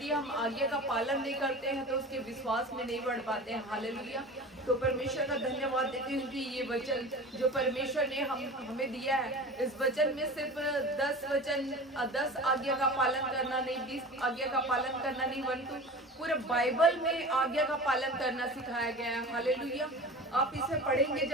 हम आज्ञा का पालन नहीं करते हैं तो उसके विश्वास में नहीं बढ़ पाते हैं। हालेलुया। तो परमेश्वर का धन्यवाद देती हूँ कि ये वचन जो परमेश्वर ने हमें दिया है, इस वचन में सिर्फ 10 आज्ञा का पालन करना नहीं, 20 आज्ञा का पालन करना नहीं, परंतु पूरे बाइबल में आज्ञा का पालन करना सिखाया गया है। हालेलुया। आप इसे पढ़ेंगे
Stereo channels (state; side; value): normal; both; correlation 0.35